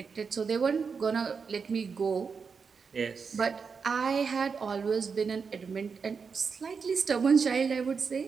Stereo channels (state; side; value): quieter; left; 5.6 dB